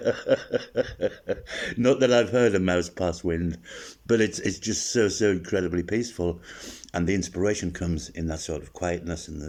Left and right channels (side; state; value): both; identical; correlation 1.00